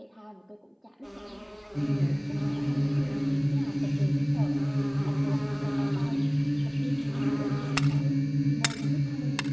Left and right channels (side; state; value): both; identical; correlation 1.00